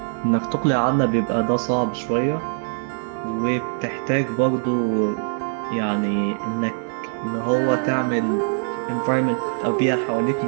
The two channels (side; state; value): left; silent; 64 dB below the other